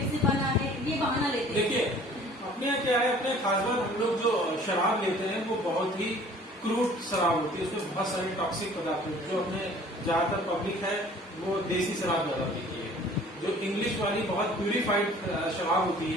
से बना है, ये बहाना लेते हैं। देखिए, अपने यहाँ क्या है, अपने खासकर हम लोग जो शराब लेते हैं वो बहुत ही क्रूड शराब होती है, उसमें बहुत सारे टॉक्सिक पदार्थ होते हैं। जो अपने ज्यादातर पब्लिक है वो देसी शराब ज्यादा पीती है। जो इंग्लिश वाली बहुत प्यूरिफाइड शराब होती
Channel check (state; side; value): normal; both; correlation 0.51